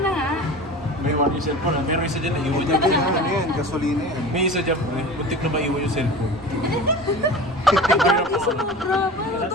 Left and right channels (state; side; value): normal; both; correlation 0.35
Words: na nga. May yung cellphone, pero isa dyan naiwan dyan. Ano yan? Gasolina yan. May isa dyan, buntik na maiwan yung cellphone. Hindi sumobra. Paano